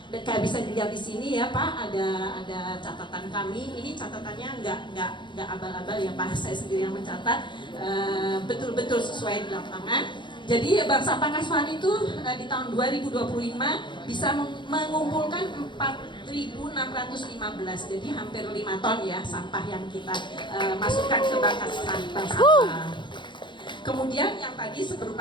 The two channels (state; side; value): late; right; 0.23 ms